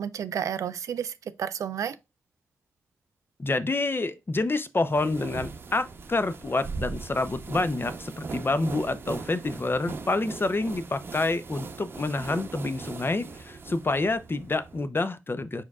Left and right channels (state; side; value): normal; both; correlation 0.77